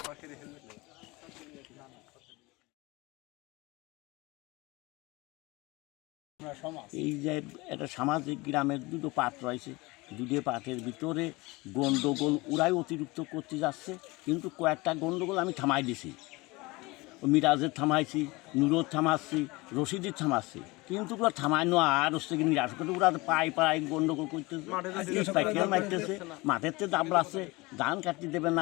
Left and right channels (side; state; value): right; quieter; 23.2 dB